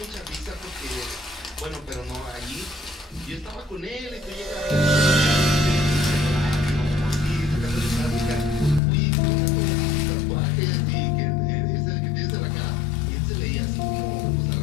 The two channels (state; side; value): drops out; right; at 8.8 s